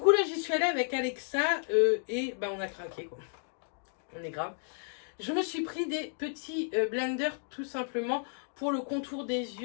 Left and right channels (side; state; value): right; silent; 56 dB below the other